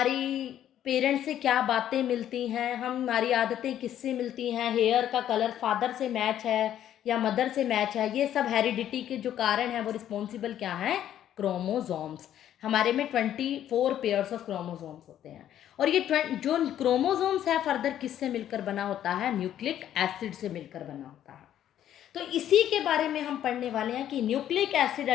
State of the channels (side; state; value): right; quieter; 11.1 dB